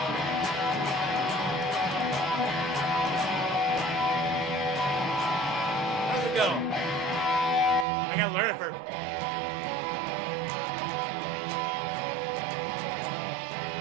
How's it go? I gotta learn it first.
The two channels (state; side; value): drops out; left; at 7.9 s